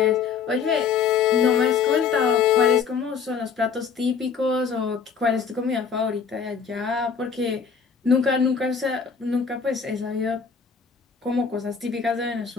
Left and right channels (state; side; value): quieter; right; 6.2 dB